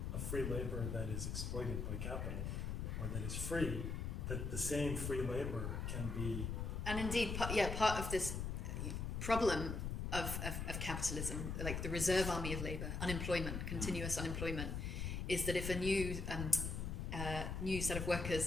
of free labor that is exploited by capital, or that is free, that the same free labor can be. And indeed, part of this problem of capitalism, like the reserve army of labour, unemployment, continuous unemployment, is that if a new set of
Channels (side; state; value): left; noise; rumble, 2 dB below the sound